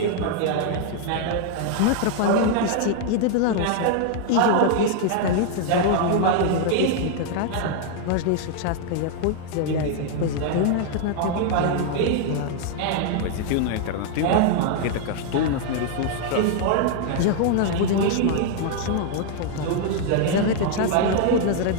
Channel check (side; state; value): both; different; correlation 0.00